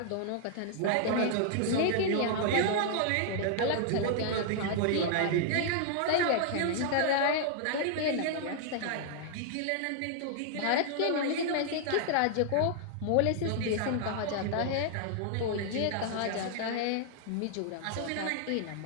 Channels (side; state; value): both; different; correlation -0.01